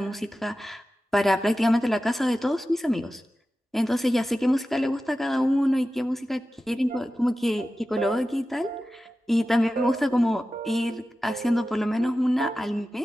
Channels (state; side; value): normal; both; correlation 0.94